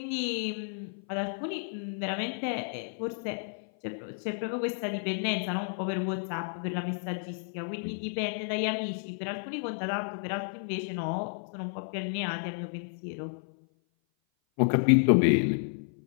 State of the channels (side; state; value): right; silent; 56 dB below the other